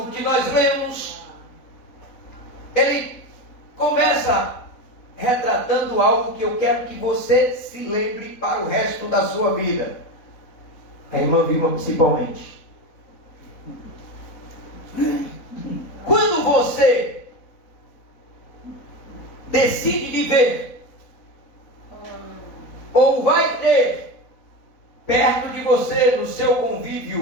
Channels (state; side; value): late; right; 4.0 ms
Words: que nós lemos, ele começa retratando algo que eu quero que você se lembre para o resto da sua vida. A irmã Vilma principalmente. Quando você decide viver, ou vai ter perto de você, no seu